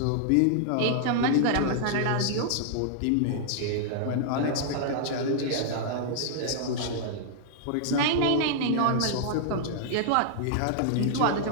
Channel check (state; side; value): different; both; correlation -0.01